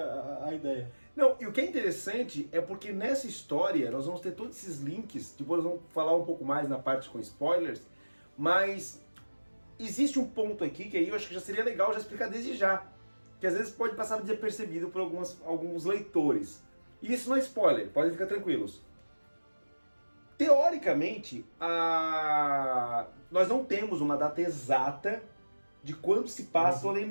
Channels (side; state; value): both; inverted; correlation -1.00